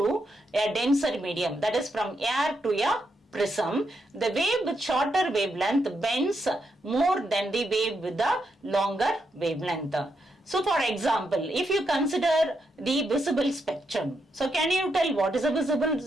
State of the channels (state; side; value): normal; both; correlation 0.81